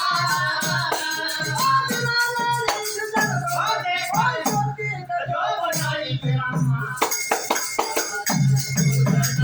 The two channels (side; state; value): both; identical; correlation 1.00